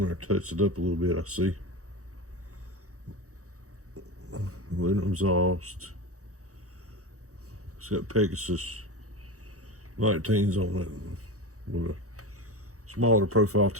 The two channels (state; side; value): late; left; 0.65 ms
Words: there and touch it up a little bit, I see. Aluminum exhaust. It's got Pegasus 19s on it with a smaller profile